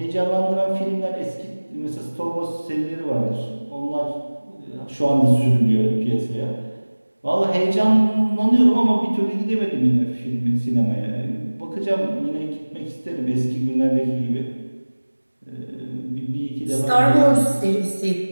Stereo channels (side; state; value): both; inverted; correlation -1.00